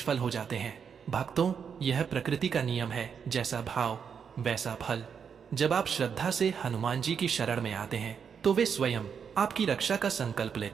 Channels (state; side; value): quieter; left; 6.9 dB